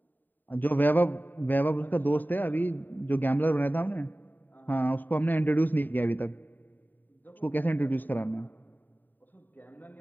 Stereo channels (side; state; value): right; late; 0.089 ms